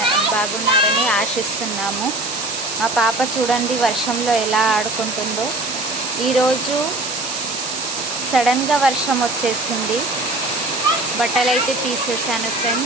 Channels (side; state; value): right; noise; hiss, 5 dB below the sound